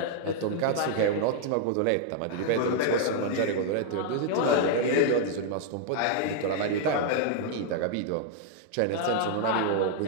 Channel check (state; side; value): different; both; correlation -0.01